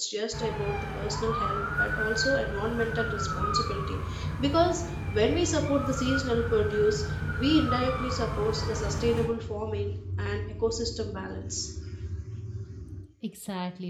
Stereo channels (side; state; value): both; identical; correlation 1.00